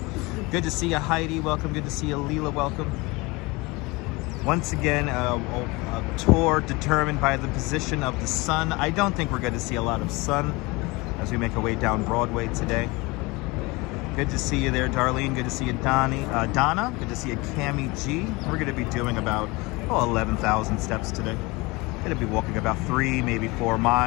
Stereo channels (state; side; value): quieter; right; 24.2 dB